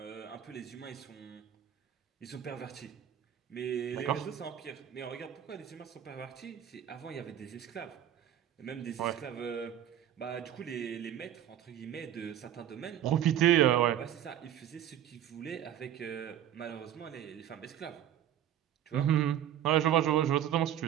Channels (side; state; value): left; quieter; 10.9 dB